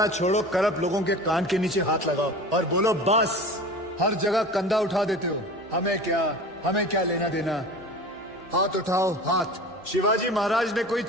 छोड़ो, करप्ट लोगों के कान के नीचे हाथ लगाओ और बोलो बस। हर जगह कंधा उठा देते हो, हमें क्या लेना देना। हाथ उठाओ, हाथ। शिवाजी महाराज ने कोई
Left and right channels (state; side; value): normal; both; correlation 0.36